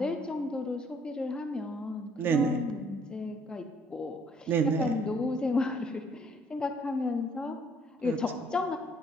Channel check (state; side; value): normal; both; correlation 0.63